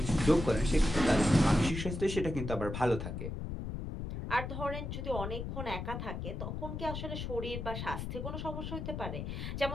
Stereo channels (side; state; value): left; noise; rumble, 5 dB below the sound